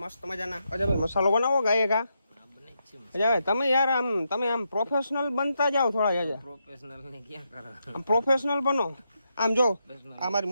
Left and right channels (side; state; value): both; inverted; correlation -0.83